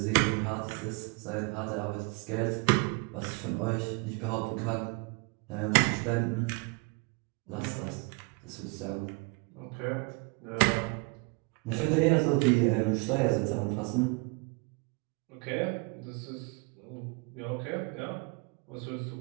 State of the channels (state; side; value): quieter; left; 30.0 dB